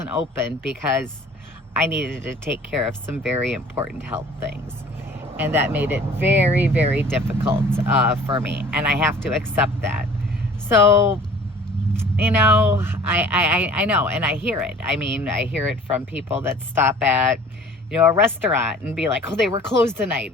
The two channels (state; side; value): normal; both; correlation 0.48